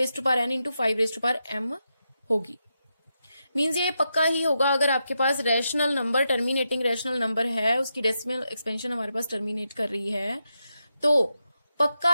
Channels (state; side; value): inverted; both; correlation -0.86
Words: इंटू 5m होगी। मीन्स ये पक्का ही होगा अगर आपके पास rational number, terminating rational number है, उसकी डेसिमल एक्सपेंशन हमारे पास टर्मिनेट कर रही है, तो पक्का